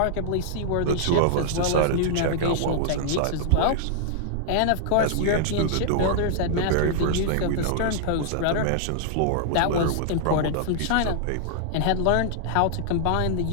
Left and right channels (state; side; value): different; both; correlation -0.01